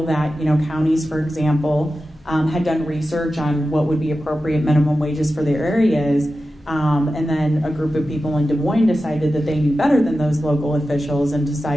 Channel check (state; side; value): normal; both; correlation 0.93